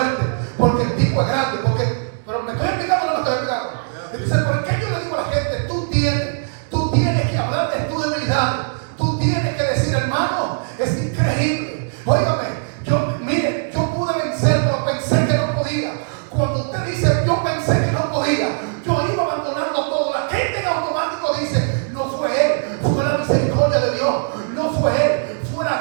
porque el tipo es grande, pero me estoy explicando o no me estoy explicando. Entonces, ¿por qué yo le digo a la gente: tú tienes que hablar de tu debilidad? Tú tienes que decir: hermano, es increíble. Óigame, yo pude vencer, pero pensé que no podía. Cuando usted dice: yo pensé que no podía, yo iba abandonando todo, la gente en automático dice: no fue él, fue la misericordia de Dios, no fue él, fue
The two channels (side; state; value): left; silent; digital silence